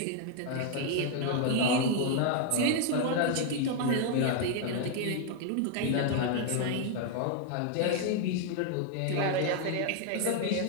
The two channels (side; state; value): both; different; correlation 0.00